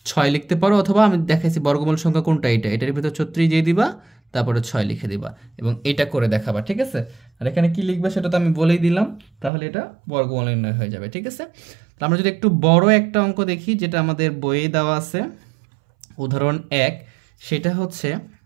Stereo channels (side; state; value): left; drops out; at 9.5 s